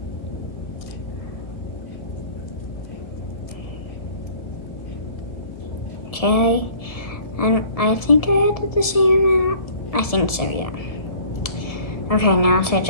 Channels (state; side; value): late; right; 1.7 ms